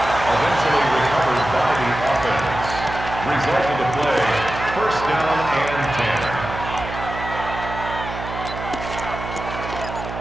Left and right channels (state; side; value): noise; right; hum, 8 dB below the sound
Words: Eventually recovered by the offense. Result of the play, first down and